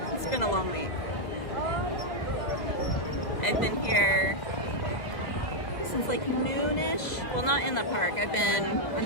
It's been a long week. I've been here since like noonish. Well, not in the park. I've been on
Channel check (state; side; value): late; right; 1.9 ms